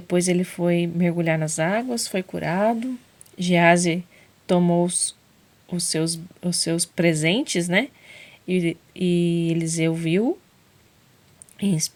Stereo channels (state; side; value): identical; both; correlation 1.00